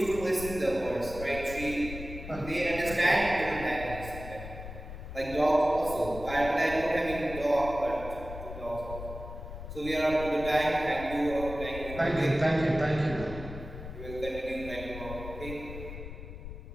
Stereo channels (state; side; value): noise; left; rumble, 10 dB below the sound